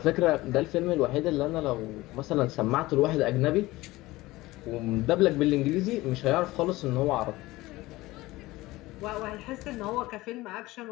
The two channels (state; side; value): quieter; right; 19.1 dB